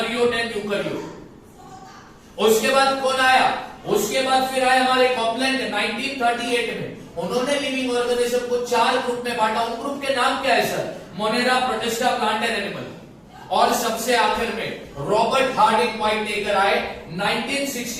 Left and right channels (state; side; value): identical; both; correlation 1.00